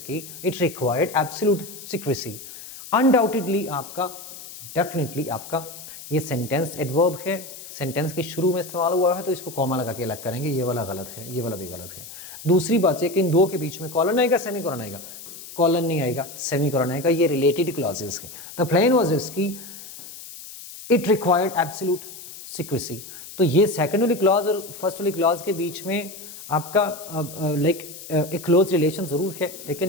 it required absolute secrecy. Undoubtedly आपका, डेफिनेटली आपका, ये सेंटेंस एडवर्ब है, सेंटेंस के शुरू में सवाल हुआ है तो इसको कॉमा लगा के अलग करेंगे, ये वाला गलत है, ये वाला भी गलत है। दूसरी बात है कि इन दो के बीच में कॉलन आएगा, सेमी कॉलन आएगा, कॉलन नहीं आएगा, सेमी कॉलन आएगा, ये रिलेटेड क्लॉजेस है। द प्लेन वाज इसकी इट रिक्वायर्ड एब्सोल्यूट सीक्रेसी। तो ये सेकंड वाली क्लॉज और फर्स्ट वाली क्लॉज के बीच में आपका एक क्लोज रिलेशन जरूर है, लेकिन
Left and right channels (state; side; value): noise; left; hiss, 14 dB below the sound